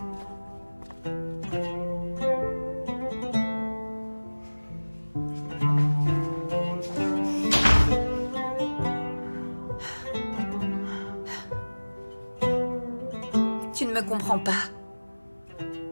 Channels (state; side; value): inverted; both; correlation -1.00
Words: Tu ne me comprends pas.